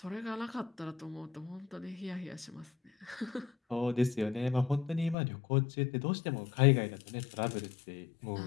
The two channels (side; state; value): right; drops out; at 5.2 s